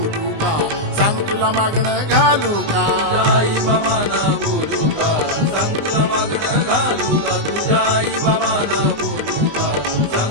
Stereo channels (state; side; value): late; left; 19 ms